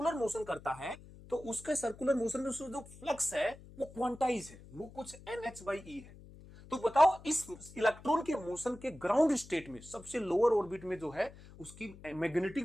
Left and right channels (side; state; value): left; noise; hum, 19 dB below the sound